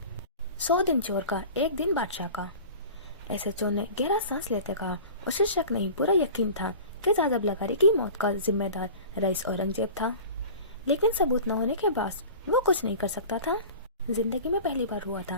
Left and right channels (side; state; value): both; inverted; correlation -0.39